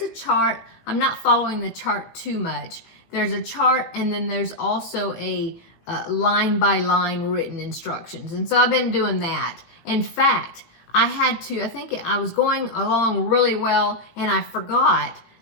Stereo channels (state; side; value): late; right; 18 ms